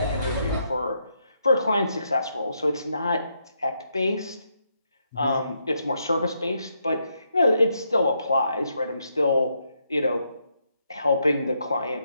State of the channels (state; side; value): inverted; both; correlation -0.78